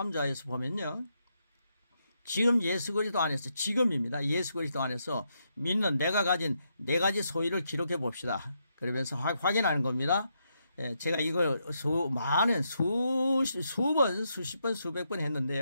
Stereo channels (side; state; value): both; inverted; correlation -0.80